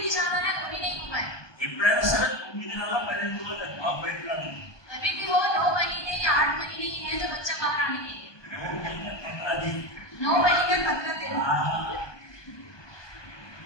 जाना है कभी नहीं हो पाएगा। ఎప్పుడైనా సరే 9 నెలల 15 రోజులు మా బయట రాదు, अभी भी हो 9 महीने या 8 महीने ही है जो बच्चा बाहर आने के लिए, 9 महीने 15 दिन,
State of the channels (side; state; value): right; late; 1.2 ms